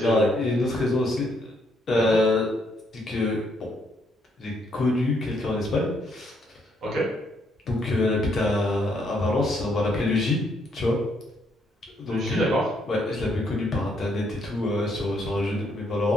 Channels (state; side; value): normal; both; correlation 0.73